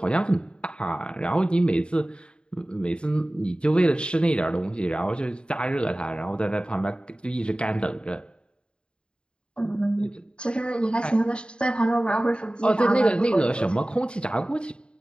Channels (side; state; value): right; late; 0.051 ms